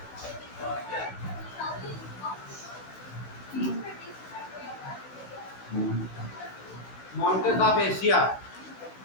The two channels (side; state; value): right; late; 16 ms